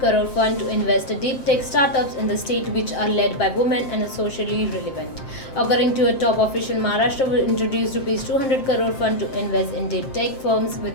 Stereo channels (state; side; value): late; right; 7.6 ms